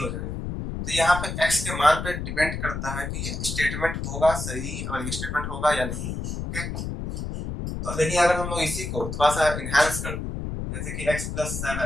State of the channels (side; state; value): left; noise; rumble, 5 dB below the sound